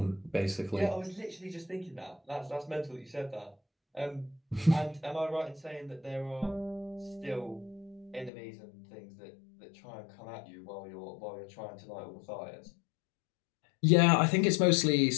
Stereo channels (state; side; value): drops out; right; at 8.3 s